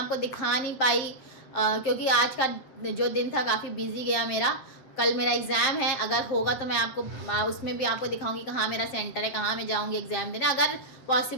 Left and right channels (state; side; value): late; right; 7.6 ms